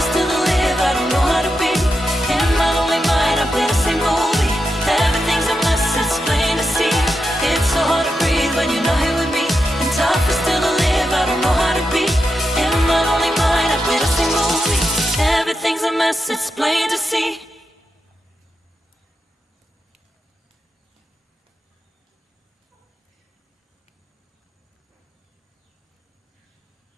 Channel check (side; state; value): both; normal; correlation 0.87